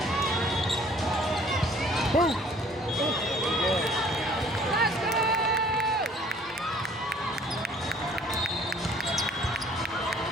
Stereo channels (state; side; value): normal; both; correlation 0.56